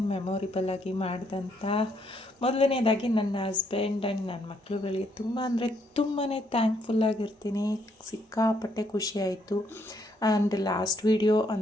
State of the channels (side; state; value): both; normal; correlation 0.72